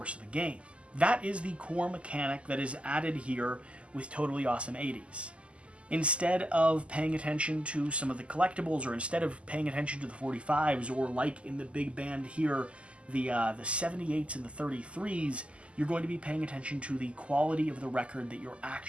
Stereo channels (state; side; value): late; left; 0.056 ms